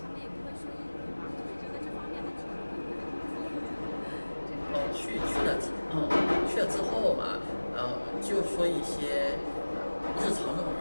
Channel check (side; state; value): both; inverted; correlation -1.00